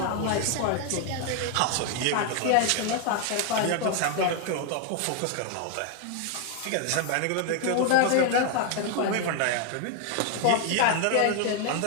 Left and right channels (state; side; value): different; both; correlation 0.00